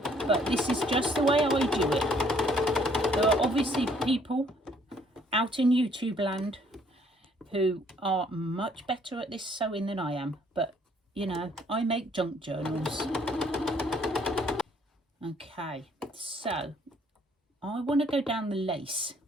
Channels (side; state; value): both; normal; correlation 0.63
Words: but this is just the way I do it. There are obviously people out in YouTube land who are much better at this sewing than I am, but you know, I make junk journals. Okay, so I want to go down the lace,